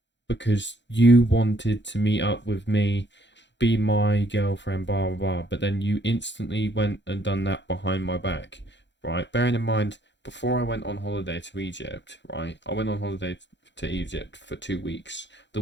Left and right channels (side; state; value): right; late; 0.52 ms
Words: because you wanted to meet up with me, be my girlfriend, blah blah blah, but then you instantly went and done that behind my back, right? Bearing in mind, before I went on holiday to Egypt, right? I went on holiday to Egypt for 2 weeks. The